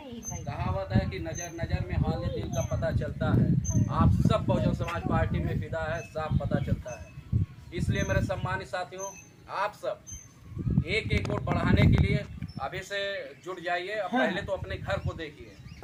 कहावत है कि नजर नजर में हाल दिल का पता चलता है। आप सब बहुजन समाज पार्टी में फिदा है, साफ पता चलता है। इसलिए मेरे सम्मानित साथियों, आप सब एक एक वोट बढ़ाने के लिए अभी से जुट जाइए। अब पहले तो अपने घर को देखिए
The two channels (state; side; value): identical; both; correlation 1.00